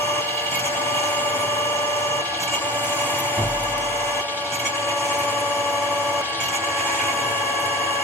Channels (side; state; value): both; normal; correlation 0.36